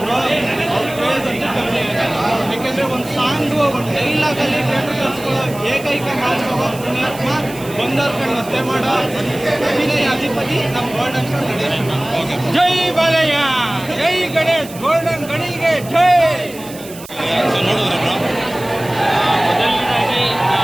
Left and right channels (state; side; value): noise; right; hiss, 16 dB below the sound